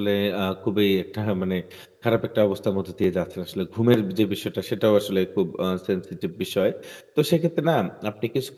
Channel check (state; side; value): identical; both; correlation 1.00